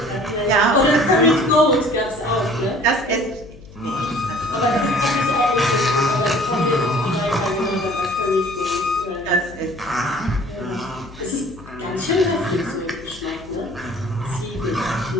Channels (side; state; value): left; noise; hum, 19 dB below the sound